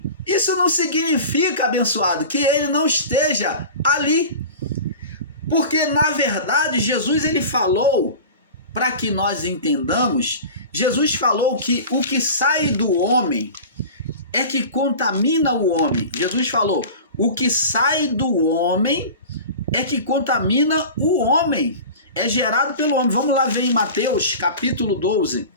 isso não significa, abençoado, que ele não esteja ali. Porque, na verdade, Jesus ele falou, para que nós entendamos, Jesus falou que o que sai do homem é que contamina o homem. Jesus falou, o que sai do homem é que contamina o homem. É gerado pelo homem. Vamos lá ver em Mateus capítulo 12.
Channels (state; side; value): inverted; both; correlation -0.35